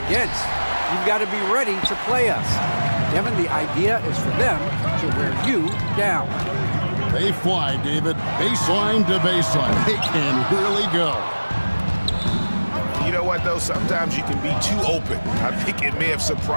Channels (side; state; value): both; inverted; correlation -1.00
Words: You've got to be ready to play us. Kevin, the idea is for them to wear you down. They fly, David. Baseline to baseline. They can really go. You know what, though? Sometimes you can be too open. I think it may have